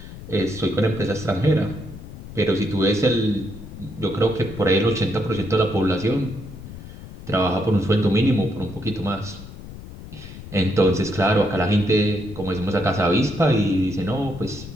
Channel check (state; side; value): noise; left; rumble, 14 dB below the sound